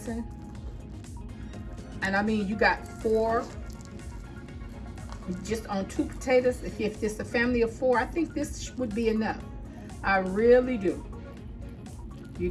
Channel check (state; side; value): identical; both; correlation 1.00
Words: And I mean, you got 4 just on 2 potatoes. If it's a family of 4, I think this would be enough. I really do. You